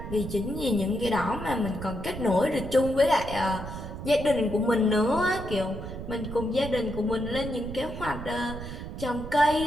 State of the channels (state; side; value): noise; right; rumble, 9 dB below the sound